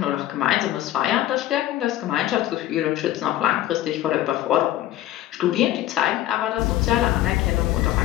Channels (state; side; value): quieter; right; 13.7 dB